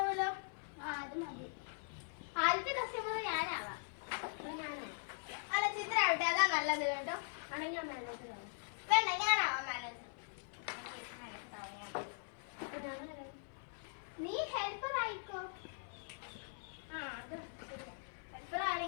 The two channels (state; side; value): silent; right; 50 dB below the other